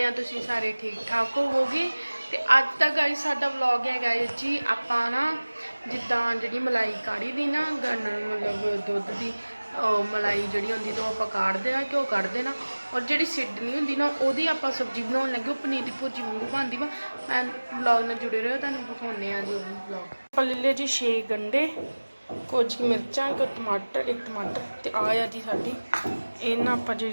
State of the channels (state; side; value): inverted; both; correlation -1.00